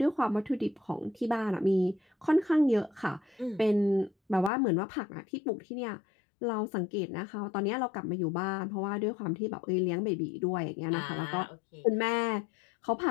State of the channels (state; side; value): drops out; right; at 4.5 s